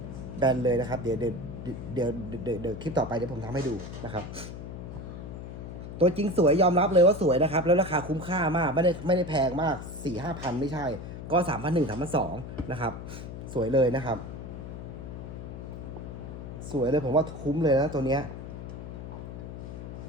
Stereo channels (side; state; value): left; noise; hum, 10 dB below the sound